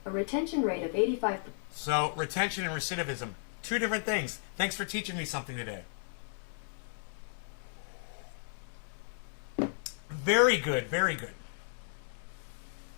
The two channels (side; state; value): right; silent; digital silence